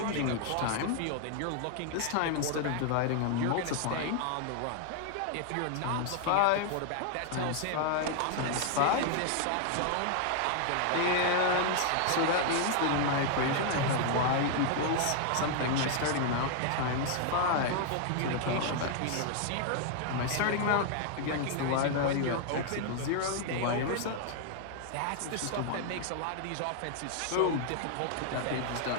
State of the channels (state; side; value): different; both; correlation 0.00